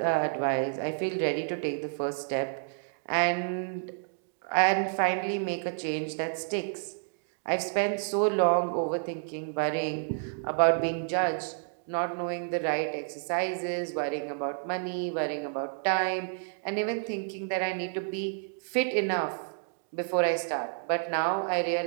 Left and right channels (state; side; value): silent; left; digital silence